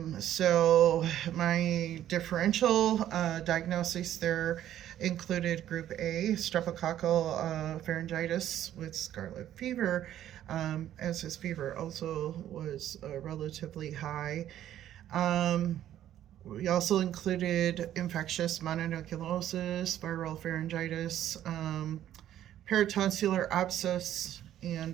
So my differential diagnosis there included group A, streptococcal pharyngitis with scarlet fever, as his fever also was relatively high. We also included infectious mononucleosis, viral pharyngitis, peritonsillar abscess,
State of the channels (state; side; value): quieter; left; 11.7 dB